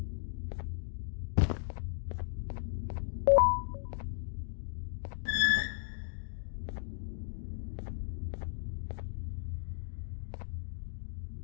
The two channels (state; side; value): silent; right; digital silence